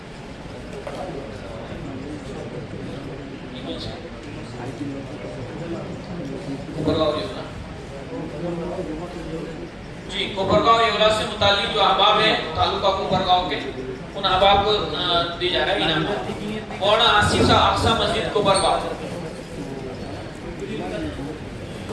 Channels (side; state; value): both; identical; correlation 1.00